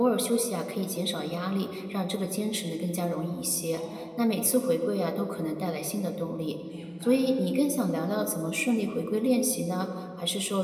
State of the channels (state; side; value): identical; both; correlation 1.00